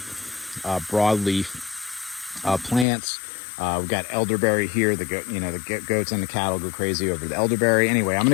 broadleaf plants. We've got elderberry here. The goats and the cattle go crazy over the elderberry. Anyway, I'm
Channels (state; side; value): drops out; right; at 2.9 s